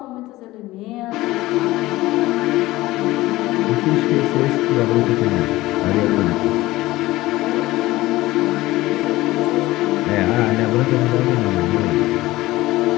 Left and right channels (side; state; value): right; quieter; 18.0 dB